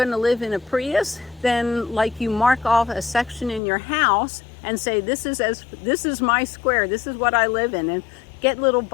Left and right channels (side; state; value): right; drops out; at 3.6 s